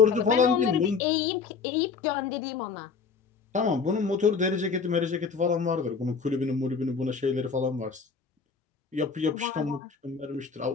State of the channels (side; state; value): right; quieter; 5.3 dB